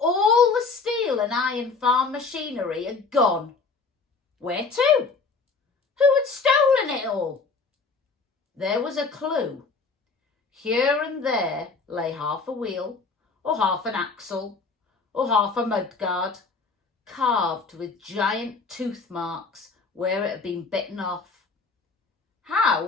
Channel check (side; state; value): right; quieter; 4.3 dB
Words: the steel and iron farm machinery had gone. Where to? Who had stolen it all? There was a clue. Here and there lay half a wheel, or half an axle, or half a mudguard, carved with giant tooth marks where it had been bitten off.